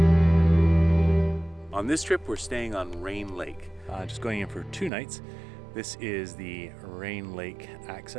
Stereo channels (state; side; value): drops out; left; at 4.9 s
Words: On this trip, we're staying on Rain Lake. Just going in for 2 nights. This is the Rain Lake